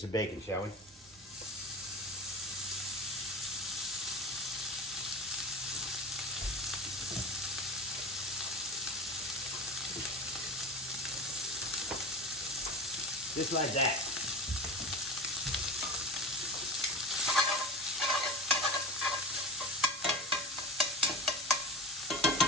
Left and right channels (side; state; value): both; normal; correlation 0.28